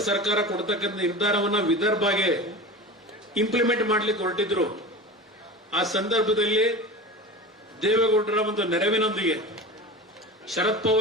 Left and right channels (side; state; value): both; normal; correlation 0.31